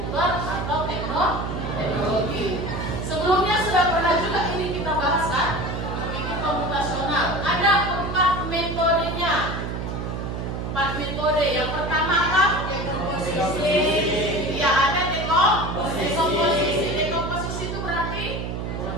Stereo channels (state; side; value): noise; right; hum, 4 dB below the sound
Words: atau teknologi. Sebelumnya sudah pernah juga ini kita bahas kan? Berpikir komputasional. Ada 4 metodenya. 4 metode. Yang pertama apa? Dekomposisi. Ya, ada dekomposisi. Dekomposisi itu berarti